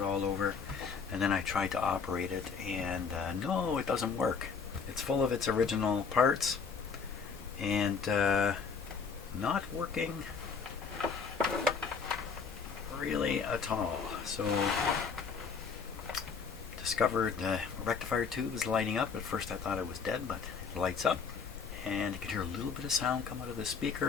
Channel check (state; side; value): quieter; right; 5.7 dB